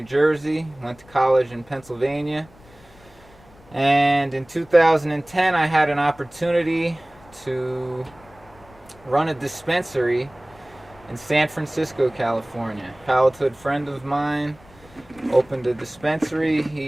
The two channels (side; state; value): left; noise; rumble, 25 dB below the sound